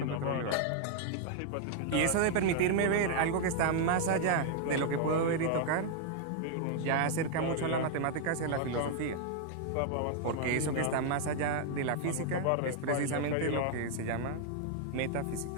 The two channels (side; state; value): both; different; correlation 0.00